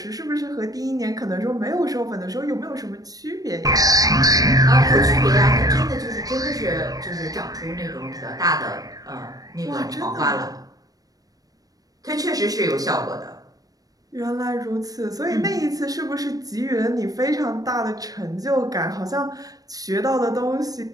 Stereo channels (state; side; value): late; left; 0.18 ms